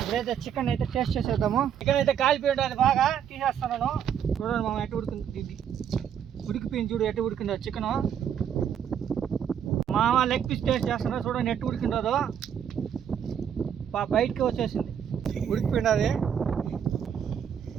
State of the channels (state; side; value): quieter; left; 8.7 dB